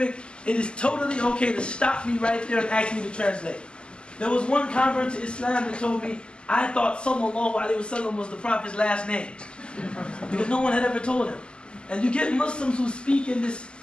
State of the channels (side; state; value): right; late; 0.050 ms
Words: it is totally okay to stop me right there and ask me to translate. There was one convert to Islam that told me, I thought sallallahu alaihi wasallam was the Prophet's last name. Because no one had ever told him. And you get Muslims who speak in this